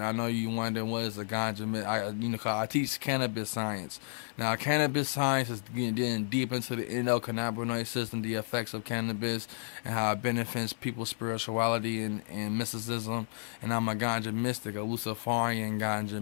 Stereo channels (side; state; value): right; silent; 55 dB below the other